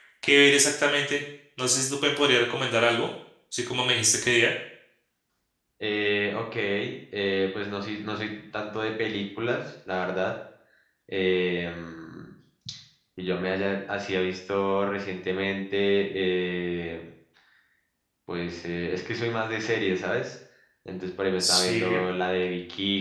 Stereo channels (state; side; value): identical; both; correlation 1.00